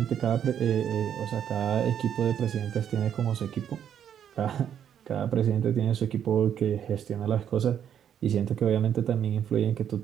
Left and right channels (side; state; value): left; quieter; 9.1 dB